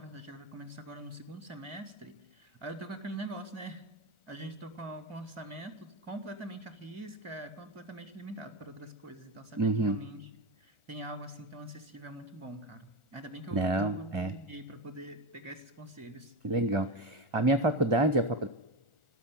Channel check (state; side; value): late; left; 1.4 ms